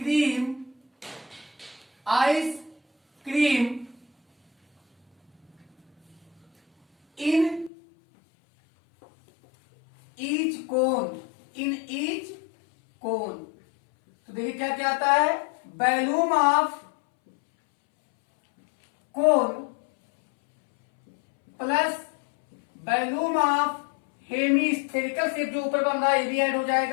in each cone. तो देखिए क्या क्या आता है, volume of cone plus volume of hemispherical shape जो ऊपर बन रहा है ये भी ऐड हो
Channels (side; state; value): right; drops out; at 7.7 s